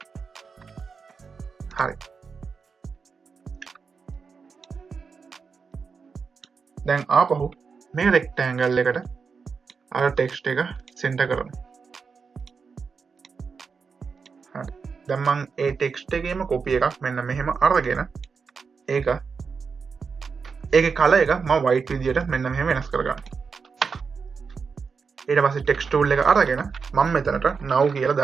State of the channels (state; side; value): quieter; left; 5.4 dB